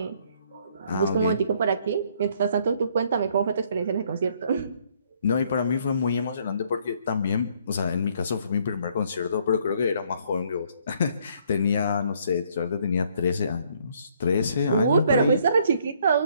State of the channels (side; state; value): both; inverted; correlation -0.66